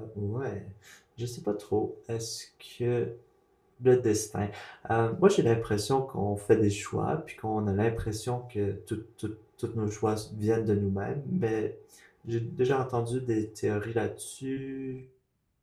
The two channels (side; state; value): both; identical; correlation 1.00